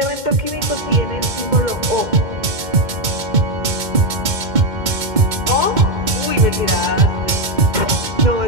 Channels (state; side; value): late; left; 2.2 ms